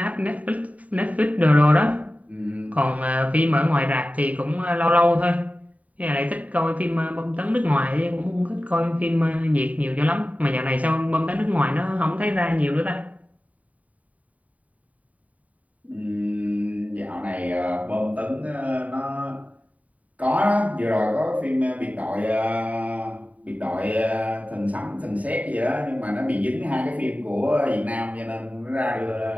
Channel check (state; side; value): late; left; 0.070 ms